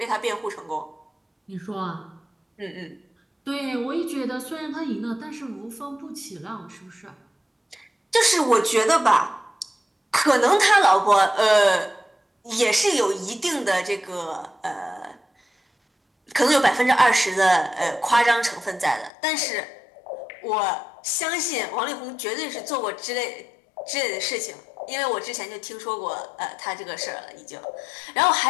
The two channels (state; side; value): drops out; right; at 19.1 s